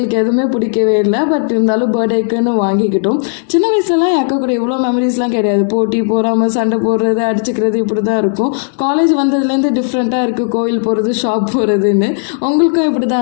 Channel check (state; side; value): silent; right; 68 dB below the other